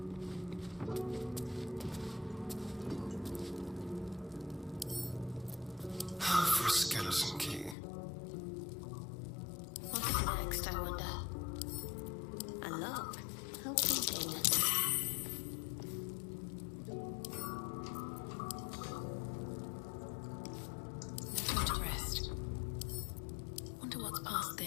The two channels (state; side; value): drops out; right; at 7.8 s